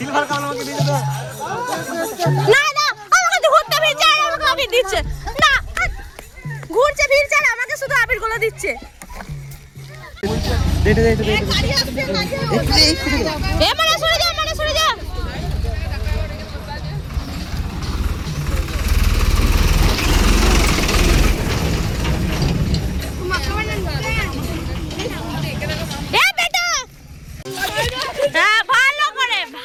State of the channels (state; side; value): identical; both; correlation 1.00